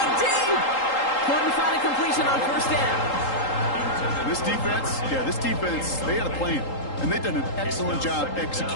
deep. Couldn't find a completion on first down. This defense, they had a plan. And they've done an excellent job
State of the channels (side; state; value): right; late; 3.8 ms